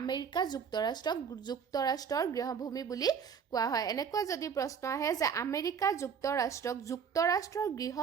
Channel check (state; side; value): quieter; left; 6.9 dB